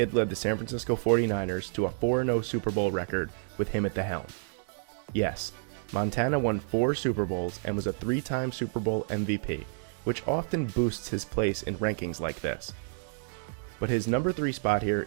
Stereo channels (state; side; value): silent; left; 58 dB below the other